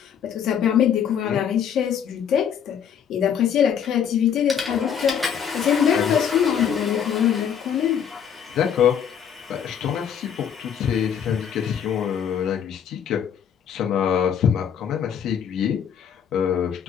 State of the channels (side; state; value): right; quieter; 8.2 dB